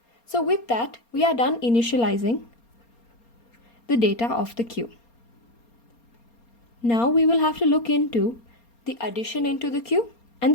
So with that, we are done initializing the data of the queue. Now we will have to look into the addition into the queue and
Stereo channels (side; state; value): right; late; 4.3 ms